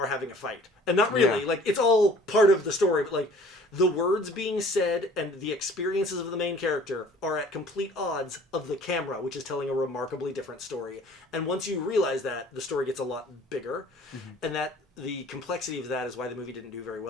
having a fight. And not really, Yeah. like, it's all part of the story, but, like, the words being said and the experiences of the main character are at complete odds of the camera, which is telling a remarkably different story. And once you realize that, the story gets a lot bigger. And that the complexity of that is why the movie didn't do very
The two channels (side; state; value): both; normal; correlation 0.51